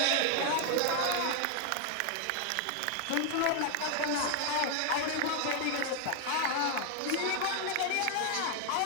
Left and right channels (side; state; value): both; different; correlation 0.00